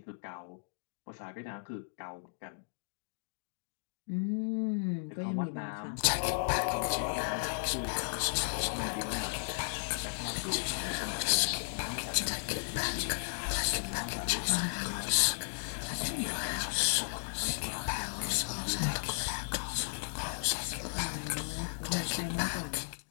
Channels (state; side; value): silent; right; digital silence